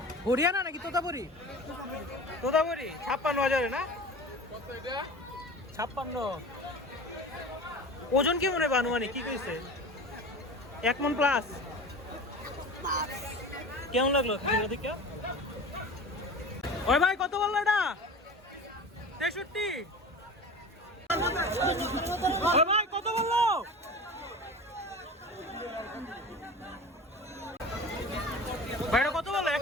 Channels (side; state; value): both; normal; correlation 0.35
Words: হরিয়ানা নাকি তোতাপুরি? তোতাপুরি 56,000 না? 56। ওজন কি মনে হয় আনুমানিক কি কইছে? 1 মণ প্লাস। কেমন লাগলো দেখে? ওই ভাই কত বললো এটা? 63। ওই ভাই কত বললো? ভাই এটা কত বললো?